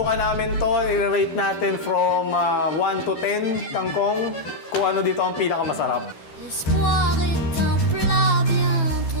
namin to. I-rate natin from 1 to 10 kangkong. Kung ano dito ang pinakamasarap. L'espoir est un plat bien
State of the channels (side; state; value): right; late; 12 ms